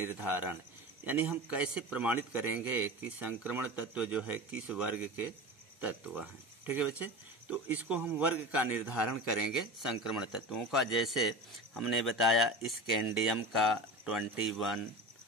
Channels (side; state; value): both; normal; correlation 0.29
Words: यानी हम कैसे प्रमाणित करेंगे कि संक्रमण तत्व जो है किस वर्ग के तत्व हैं। ठीक है बच्चे, तो इसको हम वर्ग का निर्धारण करेंगे संक्रमण तत्वों का। जैसे हमने बताया स्कैंडियम का 21,